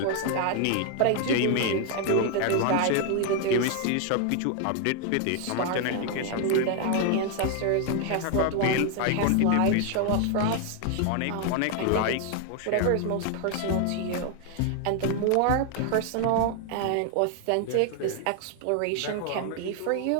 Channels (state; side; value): different; both; correlation 0.00